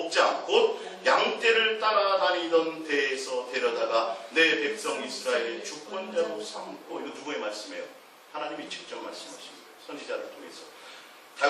곧 양떼를 따라다니던 데에서 데려다가 내 백성 이스라엘의 주권자로 삼고. 이거 누구의 말씀이에요? 하나님이 직접 말씀하신 거예요. 선지자를 통해서.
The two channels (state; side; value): identical; both; correlation 1.00